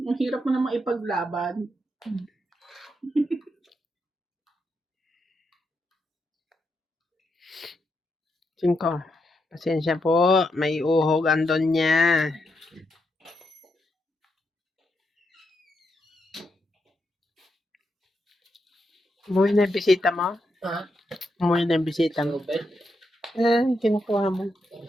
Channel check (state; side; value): normal; both; correlation 0.82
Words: Ang hirap mo namang ipaglaban. Cinco. Pasensya po, may uhog andon niya. Umuwi na yung bisita mo? Ha? Umuwi na yung bisita mo? Open? Kinukuha mo.